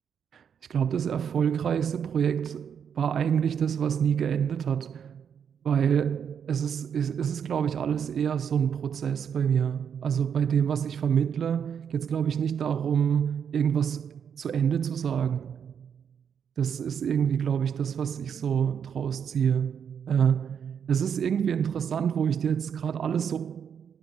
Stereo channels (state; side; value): quieter; left; 7.7 dB